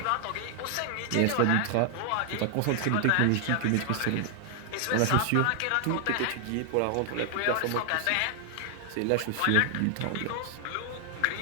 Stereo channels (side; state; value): both; different; correlation 0.00